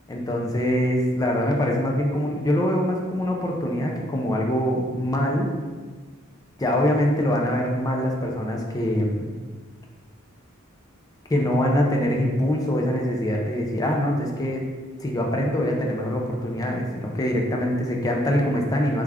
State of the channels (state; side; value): normal; both; correlation 0.70